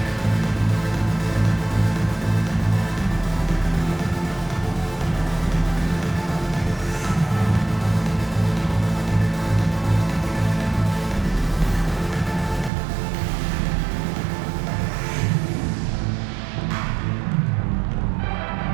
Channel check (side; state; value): left; drops out; at 12.7 s